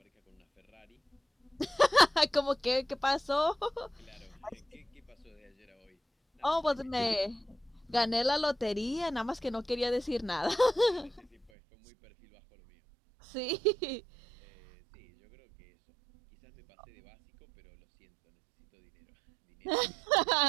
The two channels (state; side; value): drops out; left; at 11.5 s